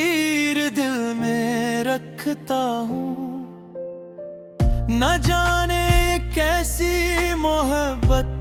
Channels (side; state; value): both; identical; correlation 1.00